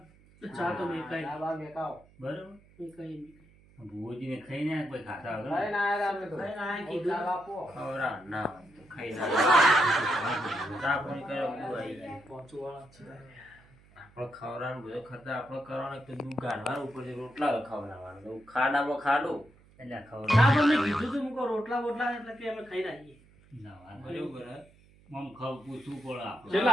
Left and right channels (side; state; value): right; noise; hum, 27 dB below the sound